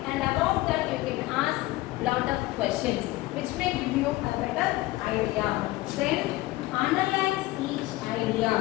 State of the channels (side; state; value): right; quieter; 18.5 dB